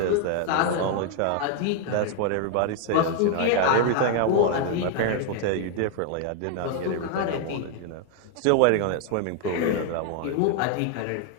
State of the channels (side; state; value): both; different; correlation 0.00